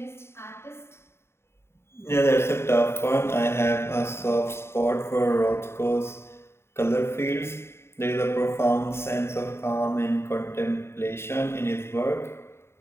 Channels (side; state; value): right; late; 0.12 ms